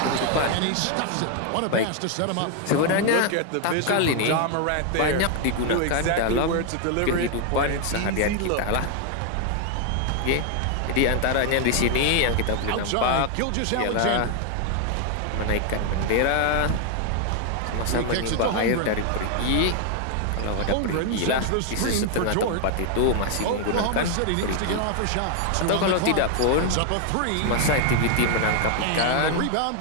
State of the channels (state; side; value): different; both; correlation 0.00